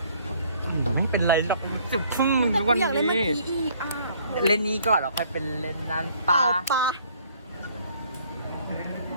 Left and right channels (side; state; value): both; inverted; correlation -0.60